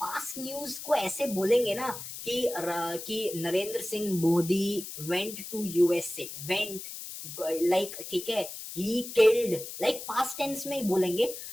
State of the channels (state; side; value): noise; left; hiss, 10 dB below the sound